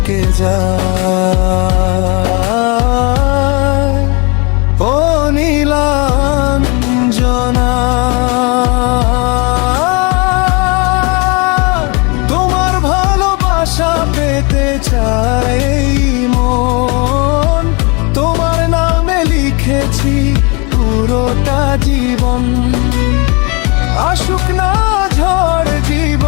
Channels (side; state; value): right; quieter; 30.3 dB